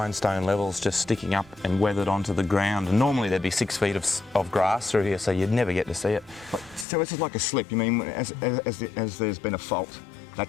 level's just sticking up and weathered onto the ground. And normally there'd be 6 feet of grass through here, so you'd never get to see it. So this is like a slip. You mean as there's been a fault,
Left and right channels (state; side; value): drops out; right; at 6.9 s